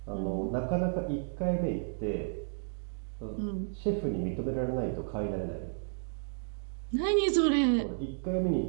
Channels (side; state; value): left; silent; digital silence